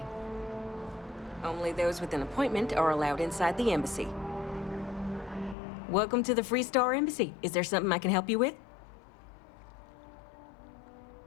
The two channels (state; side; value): drops out; right; at 5.6 s